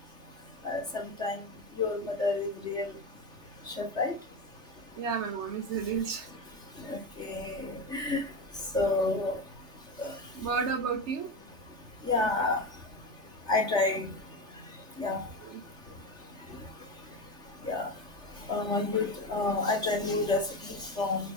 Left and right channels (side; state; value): left; late; 3.3 ms